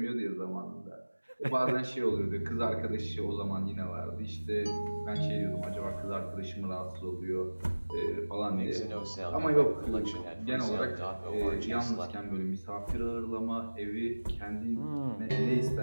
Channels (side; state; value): both; inverted; correlation -1.00